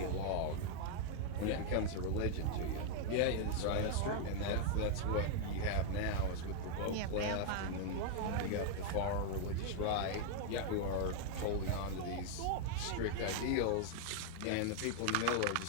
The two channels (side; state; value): both; different; correlation 0.00